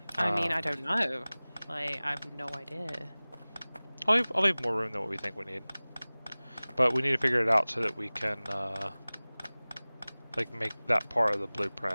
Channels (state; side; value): inverted; both; correlation -1.00